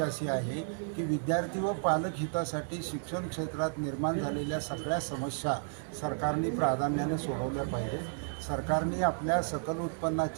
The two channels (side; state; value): left; silent; digital silence